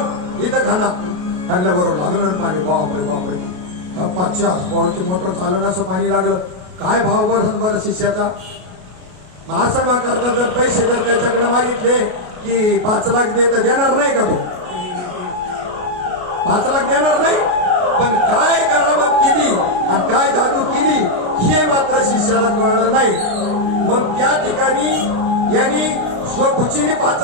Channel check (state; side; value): late; left; 33 ms